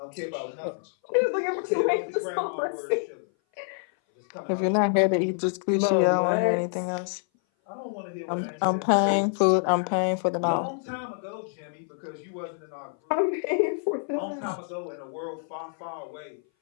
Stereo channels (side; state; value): right; silent; 57 dB below the other